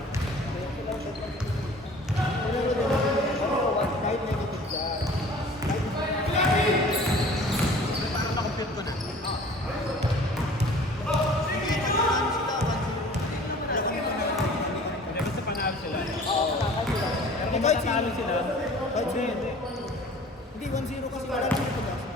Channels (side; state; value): both; normal; correlation 0.47